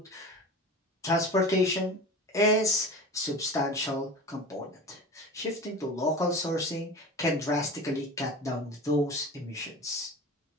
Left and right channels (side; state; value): both; normal; correlation 0.33